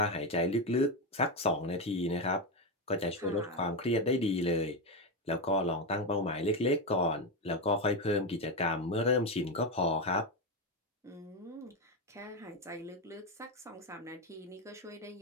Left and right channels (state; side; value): normal; both; correlation 0.11